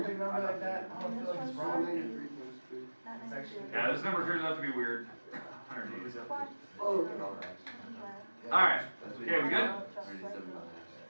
big number like that, I don't feel like it's wrong. It's actually. Yeah, this number turns out to be weird. 180. Oh, Alright. Okay, we good? 187.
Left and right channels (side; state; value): both; inverted; correlation -1.00